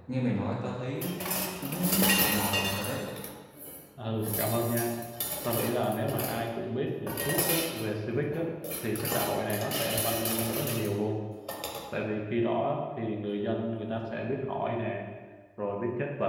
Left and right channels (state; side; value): identical; both; correlation 1.00